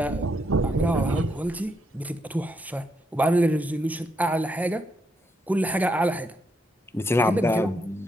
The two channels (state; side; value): normal; both; correlation 0.78